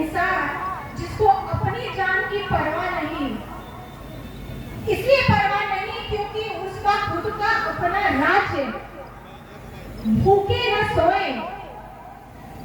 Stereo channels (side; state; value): both; identical; correlation 1.00